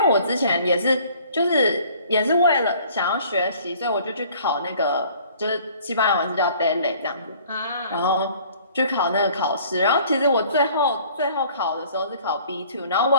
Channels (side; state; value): both; inverted; correlation -0.54